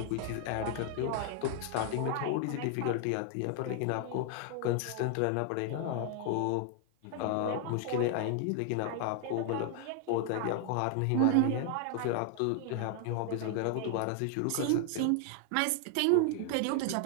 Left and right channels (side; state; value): both; different; correlation 0.00